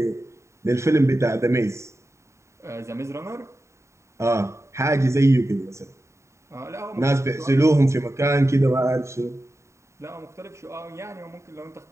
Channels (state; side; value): late; left; 0.14 ms